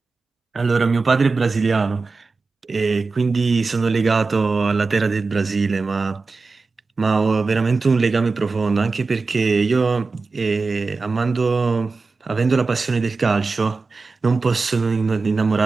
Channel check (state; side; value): quieter; left; 4.1 dB